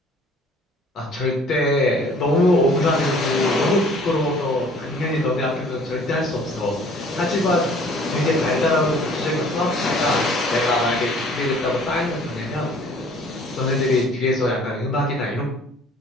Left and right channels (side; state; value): both; normal; correlation 0.53